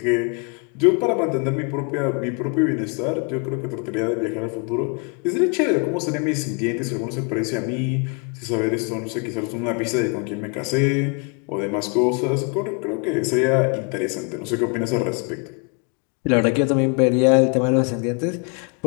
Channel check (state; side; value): quieter; right; 35.7 dB